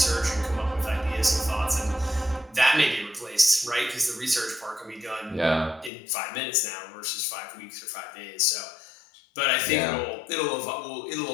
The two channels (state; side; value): drops out; right; at 5.9 s